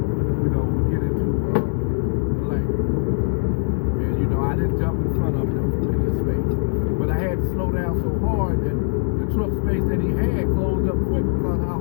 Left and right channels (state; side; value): silent; right; digital silence